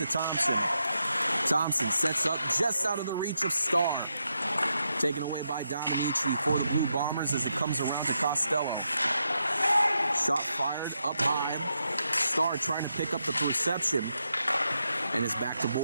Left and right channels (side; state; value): both; inverted; correlation -0.83